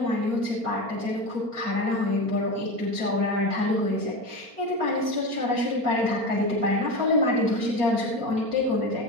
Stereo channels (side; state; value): left; late; 4.2 ms